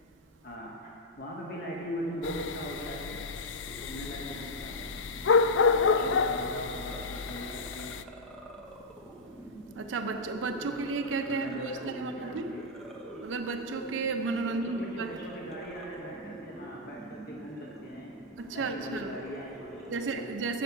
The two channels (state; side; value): normal; both; correlation -0.06